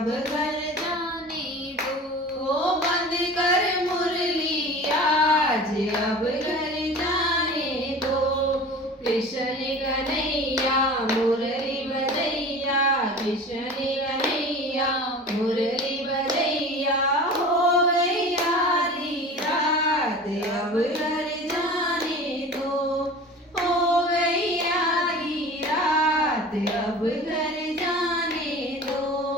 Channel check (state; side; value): normal; both; correlation 0.38